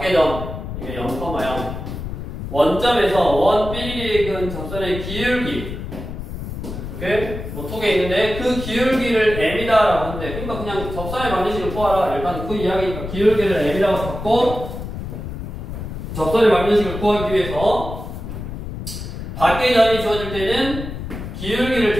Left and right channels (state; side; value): noise; left; rumble, 7 dB below the sound